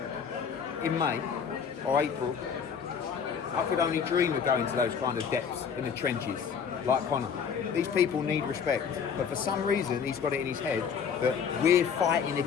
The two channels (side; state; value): right; quieter; 6.9 dB